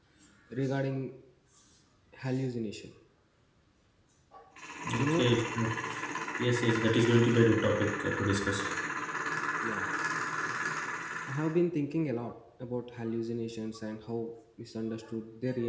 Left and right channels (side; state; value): both; identical; correlation 1.00